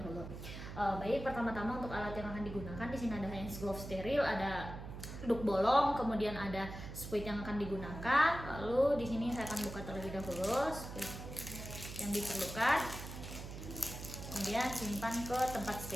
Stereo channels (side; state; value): right; noise; hum, 10 dB below the sound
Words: dahulu. Baik, pertama-tama untuk alat yang akan digunakan di sini ada hand glove steril, ada duk bolong, kemudian ada spuit yang akan digunakan. Lalu di sini saya akan buka terlebih dahulu spuit yang diperlukan. Kemudian simpan ke tempat